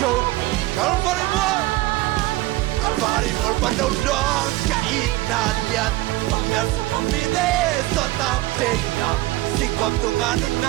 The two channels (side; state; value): left; quieter; 18.5 dB